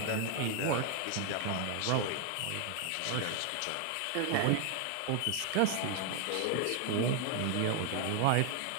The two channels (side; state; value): both; different; correlation 0.00